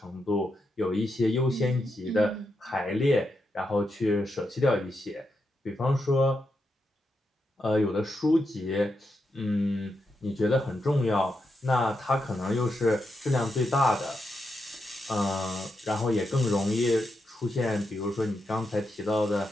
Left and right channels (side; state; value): both; normal; correlation 0.85